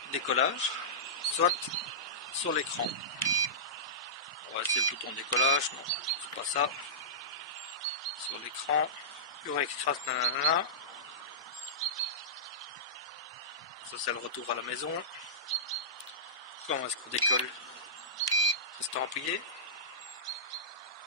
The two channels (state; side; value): normal; both; correlation -0.19